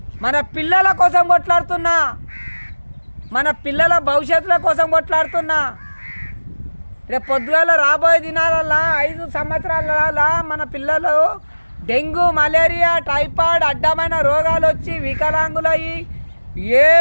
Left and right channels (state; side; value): inverted; both; correlation -1.00